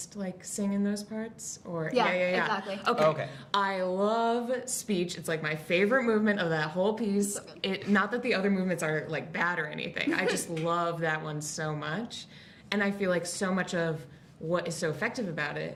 like sing in those parts? Or yeah, exactly. Okay. I love speech. It's like my favorite movement of that whole piece. Not that the other movements are like bad or anything. I just love that one so much. And I feel like so much of what is so effective about it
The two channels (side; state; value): both; identical; correlation 1.00